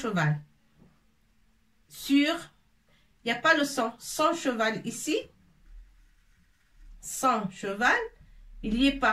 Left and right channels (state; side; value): identical; both; correlation 1.00